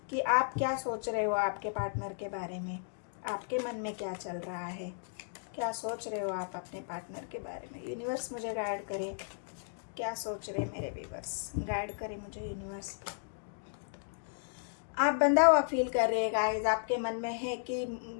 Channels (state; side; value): silent; right; digital silence